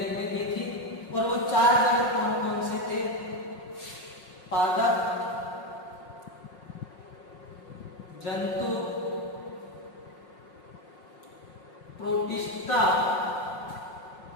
ने दी थी। और वो चार जगत कौन कौन से थे? पादप, जंतु, प्रोटिस्टा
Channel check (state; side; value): late; right; 5.5 ms